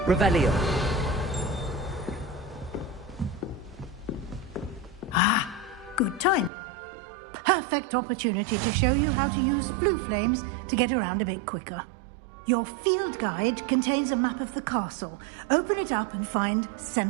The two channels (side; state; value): left; drops out; at 6.5 s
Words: Revelio. Ah, good timing. Perfect opportunity to show you how to use blue flames to get around a bit quicker. Your field guide contains a map of the castle. Open it up and find